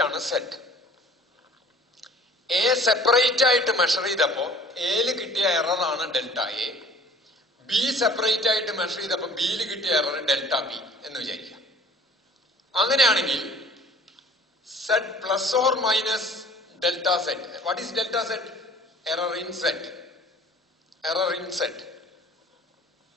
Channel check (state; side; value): normal; both; correlation 0.50